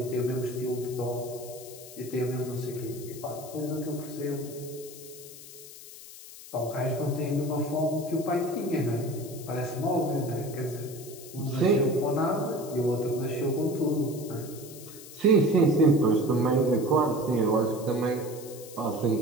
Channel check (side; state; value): left; noise; hiss, 16 dB below the sound